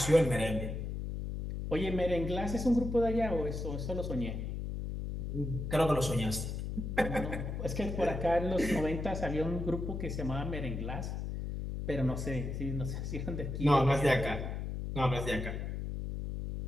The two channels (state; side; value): noise; left; hum, 4 dB below the sound